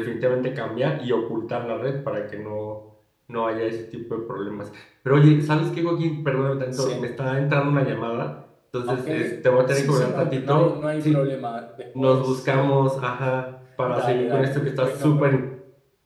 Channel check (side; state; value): both; identical; correlation 1.00